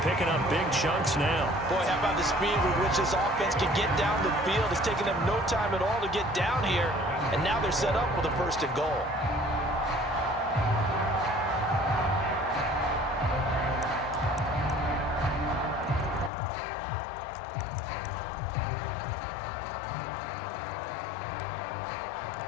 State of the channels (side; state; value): right; drops out; at 16.3 s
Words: picking up big chunks now. Boy, how about the speed with which this offense can get down the field? It's taken them no time at all to get down here, and now they're set up with a first and goal.